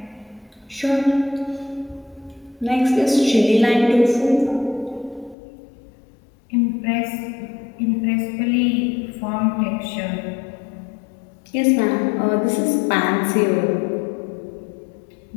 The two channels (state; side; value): drops out; right; at 5.4 s